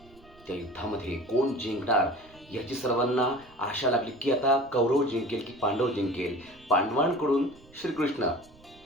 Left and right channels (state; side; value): noise; right; rumble, 26 dB below the sound